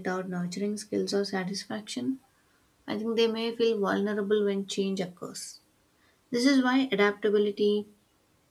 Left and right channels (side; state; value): both; identical; correlation 1.00